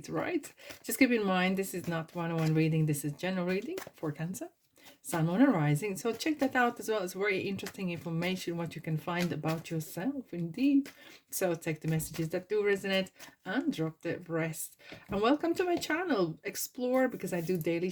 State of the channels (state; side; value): identical; both; correlation 1.00